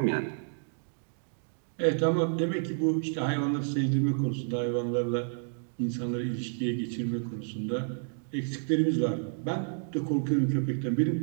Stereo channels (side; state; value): left; silent; digital silence